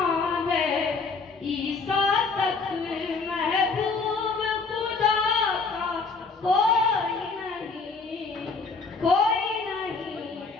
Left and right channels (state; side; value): quieter; right; 4.4 dB